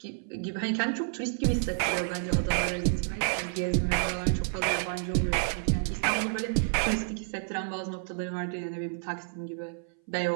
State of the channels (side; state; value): left; silent; 58 dB below the other